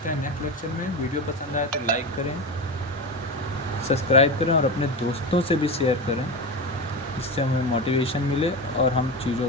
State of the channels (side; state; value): both; normal; correlation 0.21